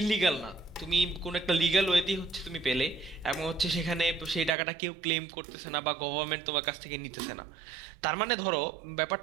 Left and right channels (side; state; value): left; drops out; at 4.5 s